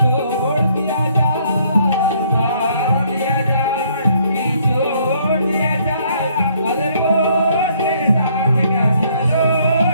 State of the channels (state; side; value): inverted; both; correlation -0.66